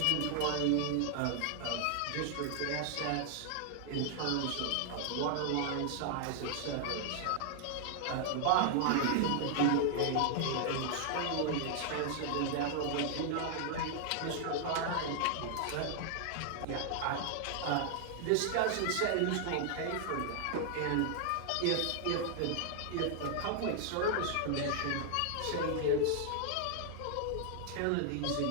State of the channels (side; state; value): both; different; correlation 0.00